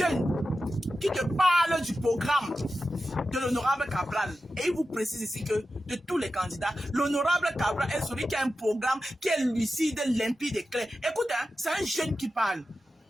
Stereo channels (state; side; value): normal; both; correlation 0.92